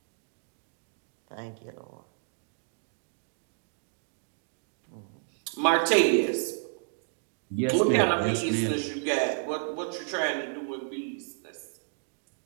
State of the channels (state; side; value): silent; left; digital silence